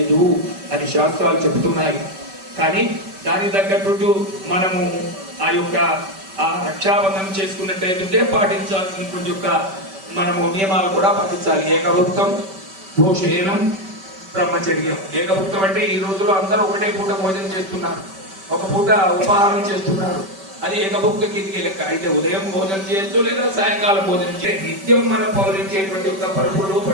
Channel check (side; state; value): left; late; 5.2 ms